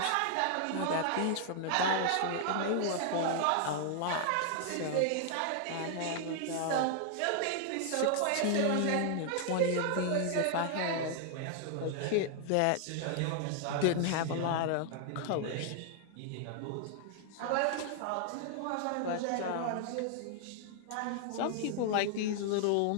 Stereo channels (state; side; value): different; both; correlation 0.00